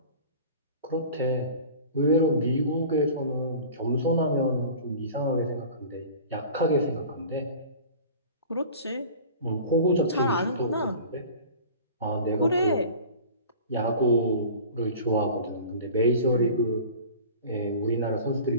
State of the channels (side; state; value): both; inverted; correlation -0.40